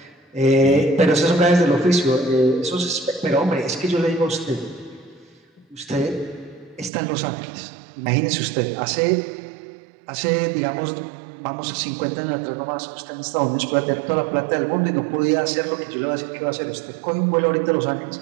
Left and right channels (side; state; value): left; drops out; at 6.9 s